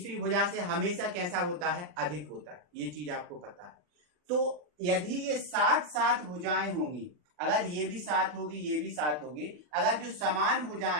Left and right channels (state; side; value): late; left; 40 ms